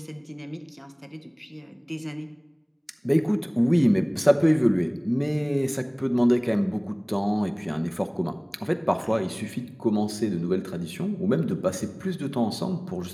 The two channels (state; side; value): identical; both; correlation 1.00